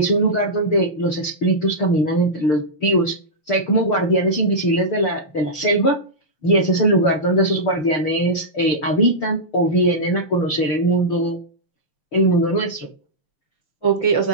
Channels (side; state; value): right; late; 6.7 ms